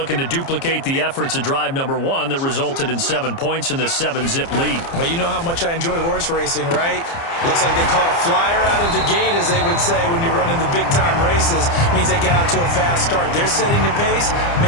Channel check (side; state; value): right; late; 29 ms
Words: to duplicate the efforts of drive number 1 that resulted in 7 points in the 7-zip lead. Well, you know how much I enjoy horse racing, right? Looks like they caught a flyer out of the gate, as they would say when you're running the big-time races. Means they get out to a fast start. They're setting the pace,